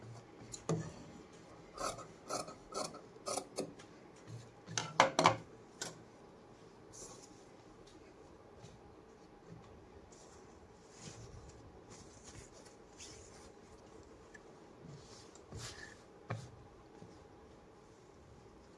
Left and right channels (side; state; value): both; identical; correlation 1.00